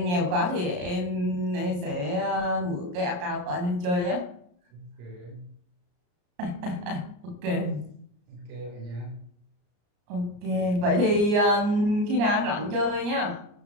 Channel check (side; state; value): left; late; 34 ms